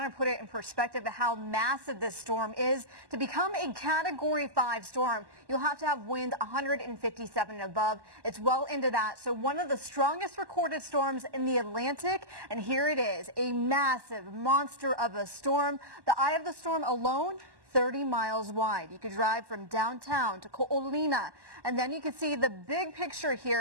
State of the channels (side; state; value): left; late; 1.1 ms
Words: to put it in perspective of how massive this storm is. To become a Category 5 storm, you'll have to have wind 157 and above. It's well into that. So one of the strongest recorded storms in the Atlantic. And here it is, a massive monster of a storm. The eye of the storm alone, 30 miles wide. You could drive from downtown to Ko'olina, and then you can see the big picture